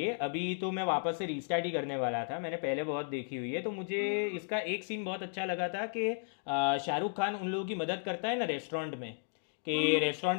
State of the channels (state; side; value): silent; right; digital silence